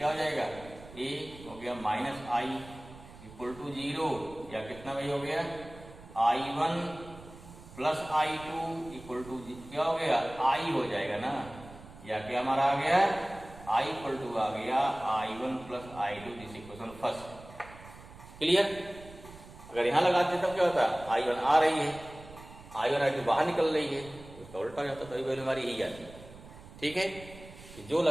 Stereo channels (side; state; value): right; noise; rumble, 18 dB below the sound